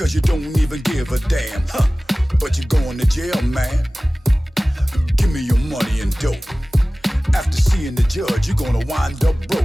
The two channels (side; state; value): both; normal; correlation 0.97